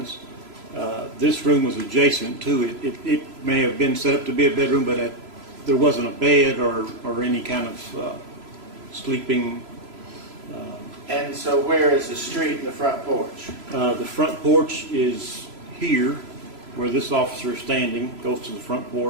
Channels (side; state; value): left; late; 3.0 ms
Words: This room was adjacent to it. It may have been set up to be a bedroom, but there wasn't a bed or any kind of sleeping. And so where is the street and the front porch? The front porch is here, where this officer is standing, goes to the front